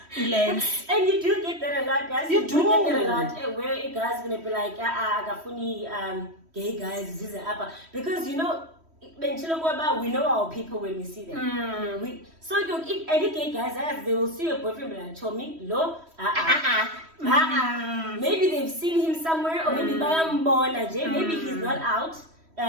lens. And you do get that a lot, guys. You do get that a lot. Where a guy's gonna be like, gay guys, this is upper, because we know our people when we see them. If any gay guys they will see your boyfriend like Tommy, maybe they've seen him somewhere, or maybe maybe he's not out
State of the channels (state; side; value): late; left; 3.1 ms